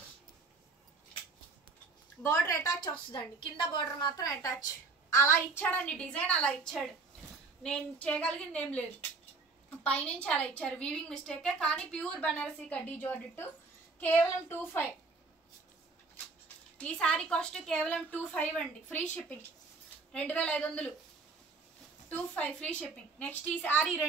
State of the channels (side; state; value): left; quieter; 4.0 dB